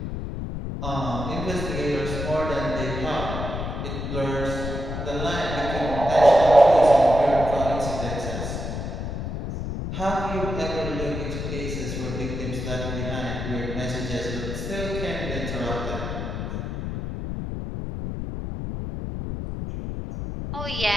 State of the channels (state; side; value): noise; left; rumble, 4 dB below the sound